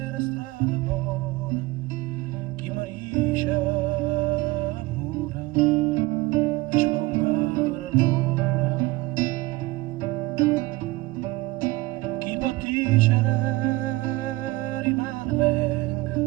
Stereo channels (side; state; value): left; quieter; 20.6 dB